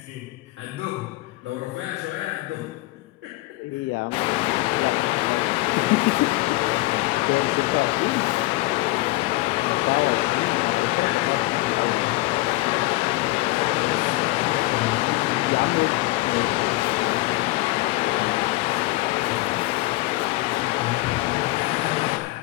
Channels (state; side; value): quieter; right; 20.0 dB